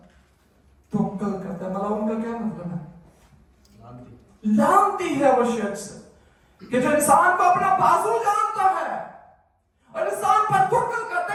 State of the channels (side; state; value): both; identical; correlation 1.00